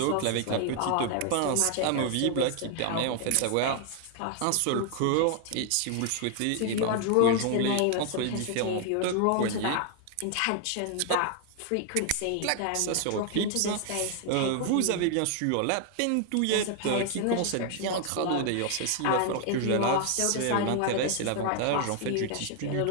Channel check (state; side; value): different; both; correlation 0.00